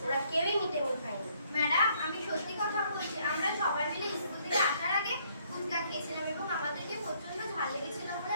ওরা কেউই মিড ডে মিল খায়নি। ম্যাডাম, আমি সত্যি কথা বলছি, আমরা সবাই মিলে স্কুল থেকে আসার আগে ফুচকা খেয়েছিলাম এবং আমাদেরকে প্রচন্ড ঝাল লেগেছিল বলে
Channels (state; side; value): inverted; both; correlation -0.67